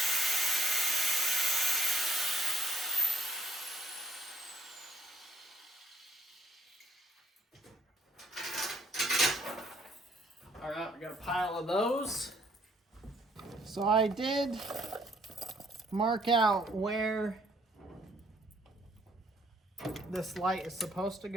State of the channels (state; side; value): normal; both; correlation 0.66